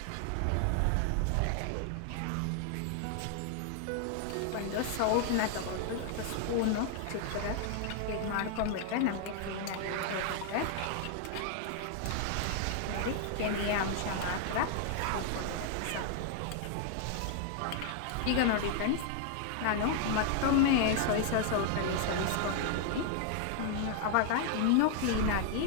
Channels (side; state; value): both; different; correlation 0.00